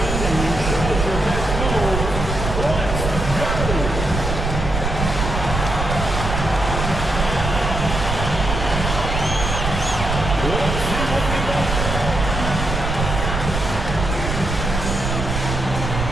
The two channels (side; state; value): right; noise; rumble, 3 dB below the sound